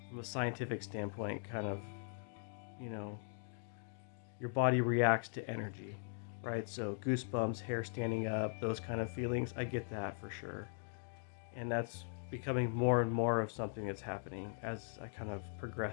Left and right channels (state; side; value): silent; right; digital silence